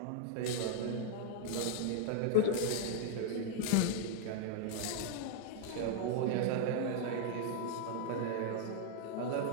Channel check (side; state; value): both; different; correlation -0.01